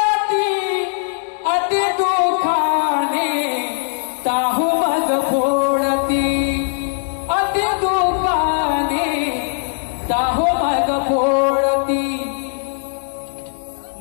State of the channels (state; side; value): silent; right; 66 dB below the other